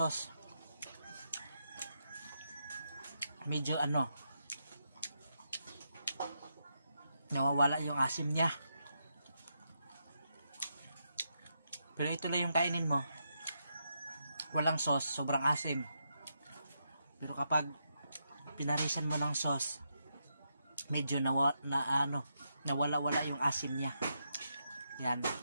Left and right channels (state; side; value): inverted; both; correlation -0.82